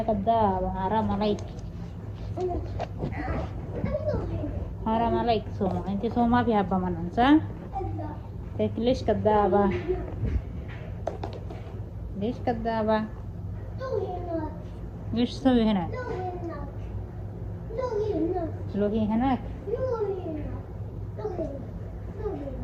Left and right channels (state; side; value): identical; both; correlation 1.00